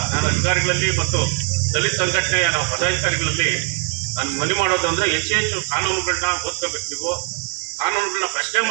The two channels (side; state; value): left; quieter; 36.9 dB